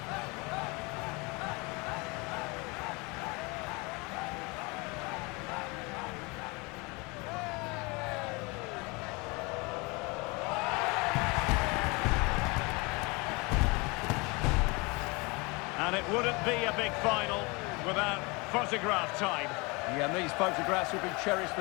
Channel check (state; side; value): quieter; right; 27.2 dB